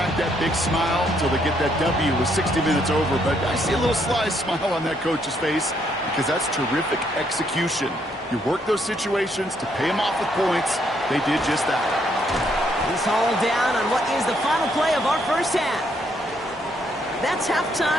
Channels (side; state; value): both; normal; correlation 0.72